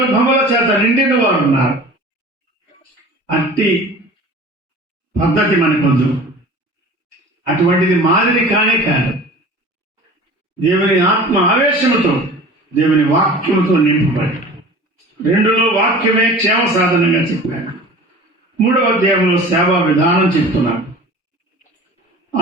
చేత నిండిన వారు ఉన్నారు. అట్టి పద్ధతి మనకొద్దు, అటువంటిది మాదిరి కానే కాదు. దేవుని ఆత్మ ఆవేశముతో, దేవుని వాక్యముతో నింపబడి, 2లో వాక్యమే క్షేమ సాధనంగా చెప్పాడు, 3వ అధ్యాయంలో సేవా విధానం చెప్తున్నాడు.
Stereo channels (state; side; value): normal; both; correlation 0.41